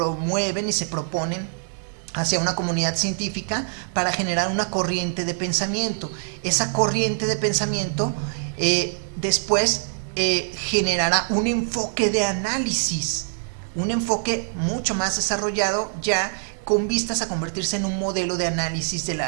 y se proponen hacia una comunidad científica para generar una corriente de pensamiento. Esa corriente de pensamiento después generará un enfoque de análisis, un enfoque mucho más desarrollado ya con vistas a convertirse en un modelo de análisis de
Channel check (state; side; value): silent; left; 63 dB below the other